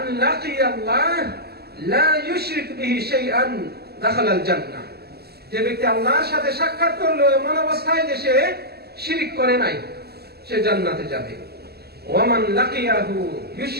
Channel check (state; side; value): late; left; 0.46 ms